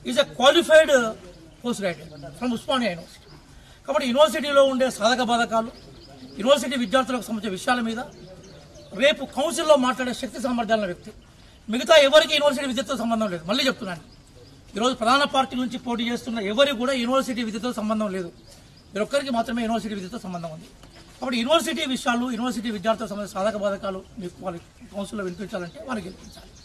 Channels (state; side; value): identical; both; correlation 1.00